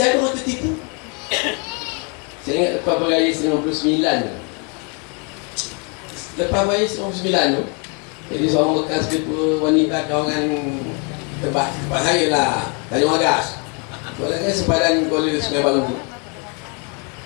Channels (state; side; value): quieter; right; 35.5 dB